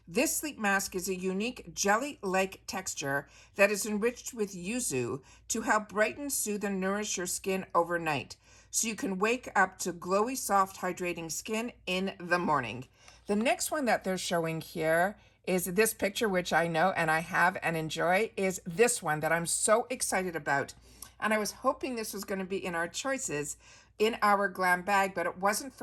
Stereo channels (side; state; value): both; identical; correlation 1.00